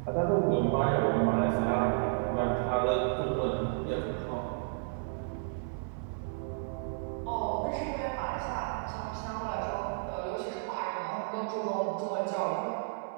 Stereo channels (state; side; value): silent; left; 56 dB below the other